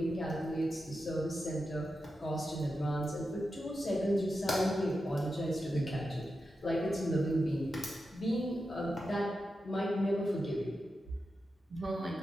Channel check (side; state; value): both; normal; correlation 0.89